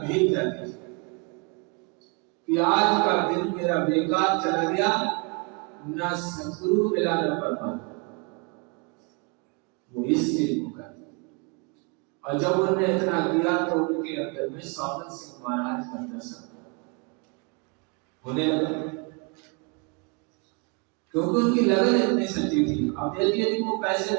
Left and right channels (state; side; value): quieter; left; 32.7 dB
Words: जाती थी कि आज का दिन मेरा बेकार चला गया, ना सतगुरु मिला न परमात्मा। वो इसलिए कर। और जब उन्होंने इतना किया तो उनके अंदर में सावन सिंह महाराज का दर्शन होने लगा, क्योंकि उनकी लगन इतनी सच्ची थी। अब देखिए कि वो कैसे